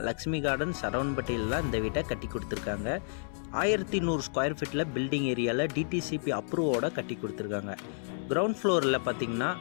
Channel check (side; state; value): right; silent; digital silence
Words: லக்ஷ்மி கார்டன் சரவணம்பட்டியில் தான் இந்த வீட்டை கட்டி கொடுத்துருக்காங்க. 1100 ஸ்கொயர் ஃபீட்டில் பில்டிங் ஏரியாவில் டிடிசிபி அப்ரூவோட கட்டி கொடுத்துருக்காங்க. கிரவுண்ட் ஃப்ளோரில் பார்த்தீங்கன்னா